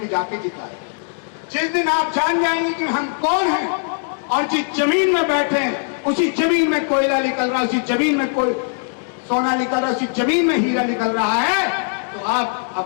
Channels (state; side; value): silent; right; 66 dB below the other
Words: जाके जिताए। जिस दिन आप जान जाएंगे कि हम कौन हैं और जिस जमीन में बैठे हैं उसी जमीन में कोयला निकल रहा है, उसी जमीन में कोई सोना निकल रहा है, उसी जमीन में हीरा निकल रहा है, तो आप